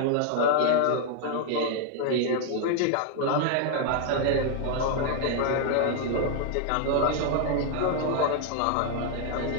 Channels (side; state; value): both; different; correlation 0.00